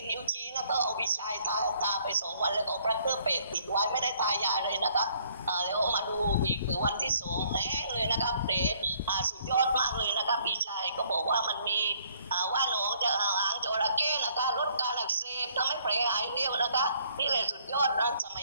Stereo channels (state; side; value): inverted; both; correlation -0.63